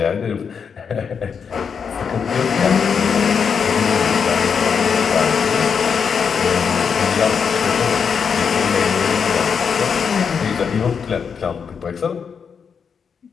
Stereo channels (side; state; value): right; quieter; 6.5 dB